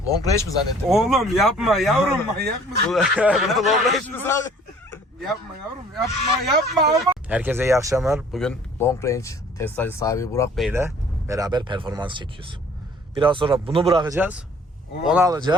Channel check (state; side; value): normal; both; correlation 0.54